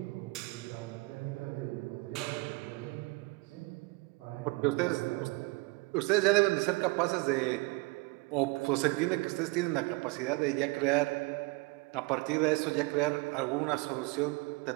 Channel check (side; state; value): left; quieter; 25.7 dB